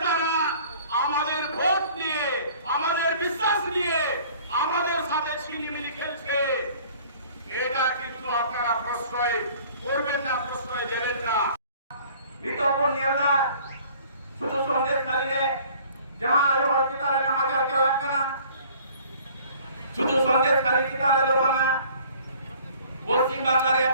আমাদের ভোট নিয়ে, আমাদের বিশ্বাস নিয়ে আমাদের সাথে ছিনিমিনি খেলছে, এটা কিন্তু আপনারা প্রশ্রয় করবেন না, প্রশ্রয় দেবেন না। বিতর্ক নিয়ে না শুধু সন্দেশখালীতে जहां आयो हॉस्पिटल में हाजिर करा करना শুধু সন্দেশখালী কিতালে লোবানা পশ্চিম বাংলার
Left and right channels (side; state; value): both; inverted; correlation -0.52